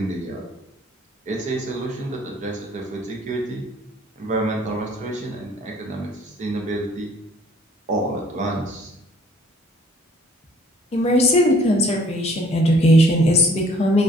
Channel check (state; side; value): normal; both; correlation 0.57